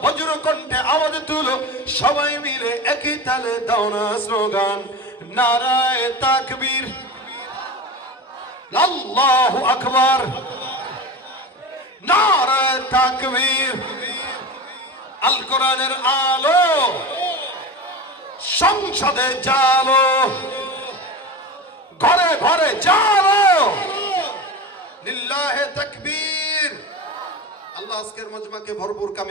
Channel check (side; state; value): both; normal; correlation 0.28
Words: বজ্র কণ্ঠে আওয়াজ তুলো, সবাই মিলে একই তালে দাও না স্লোগান, নারায়ে তাকবীর, আল্লাহু আকবার, নারায়ে তাকবীর। আল কোরআনের আলো, সংসদে জালো, ঘরে ঘরে জালো, লিল্লাহে তাকবীর। আল্লাহ আজকের মজমাকে ভরপুর